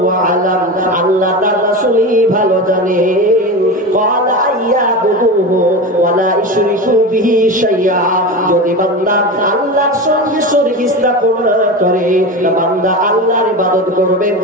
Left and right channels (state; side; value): normal; both; correlation 0.24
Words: আ'লাম, আল্লাহ তার রাসূলই ভালো জানেন। ক্বালা আইয়াবুহু ওয়া লা ইশরিকু বিহি শাইআ, যদি বান্দা আল্লাহর সঙ্গে শরীক স্থাপন না করে, বান্দা আল্লাহর ইবাদত করবে,